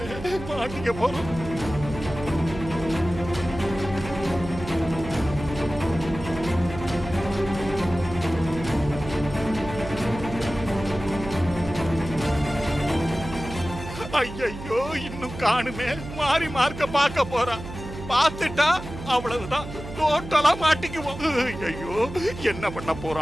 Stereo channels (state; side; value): noise; right; hum, 11 dB below the sound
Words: மாட்டிக்க போறோம். ஐயோ, இன்னும் காணுமே. மாறி மார்க்க பார்க்க போறான். பார்த்துட்டா அவ்வளவுதான், டோட்டலா மாட்டிக்குவோம். ஐயோ, என்ன பண்ண